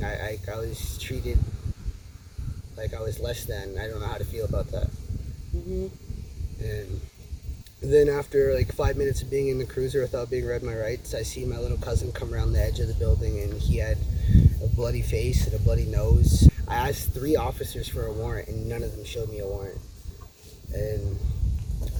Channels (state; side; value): identical; both; correlation 1.00